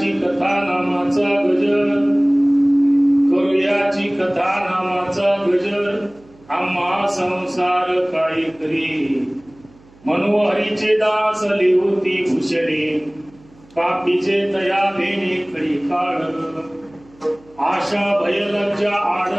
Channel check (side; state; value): right; noise; hum, 27 dB below the sound